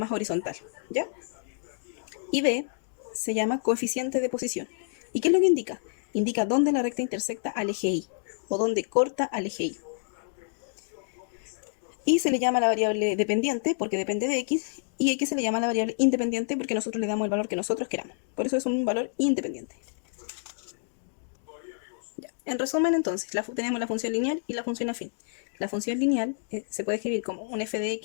horizontal, ¿ya? Y B se llama coeficiente de posición. ¿Y qué es lo que indica? Indica dónde la recta intersecta al eje Y o dónde corta al eje Y. Y se le llama la variable dependiente porque depende de x, y x se le llama la variable independiente porque nosotros le damos el valor que nosotros queramos. Por eso es un valor independiente. Ya. En resumen, entonces, tenemos la función lineal y la función afín. La función lineal se puede escribir como un f de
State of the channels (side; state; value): right; silent; digital silence